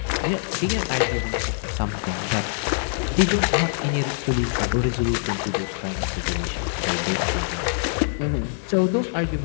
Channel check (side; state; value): right; silent; 63 dB below the other